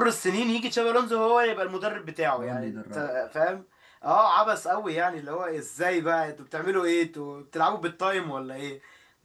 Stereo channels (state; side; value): identical; both; correlation 1.00